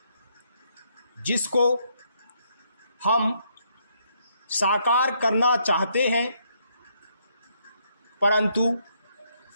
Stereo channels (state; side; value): inverted; both; correlation -0.73